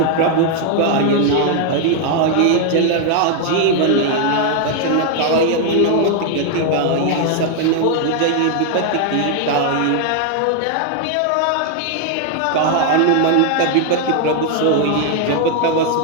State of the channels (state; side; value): different; both; correlation 0.00